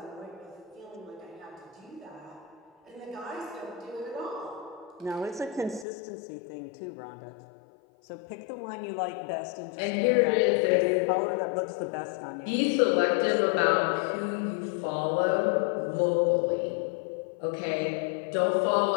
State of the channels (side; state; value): right; drops out; at 5.9 s